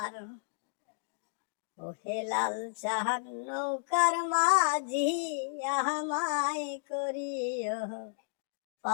ও হে লাল জাহান নৌকার মাঝি আমায় করিও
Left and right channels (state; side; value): silent; right; digital silence